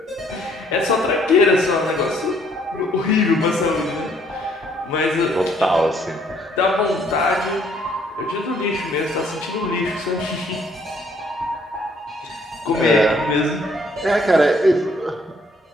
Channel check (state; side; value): normal; both; correlation 0.65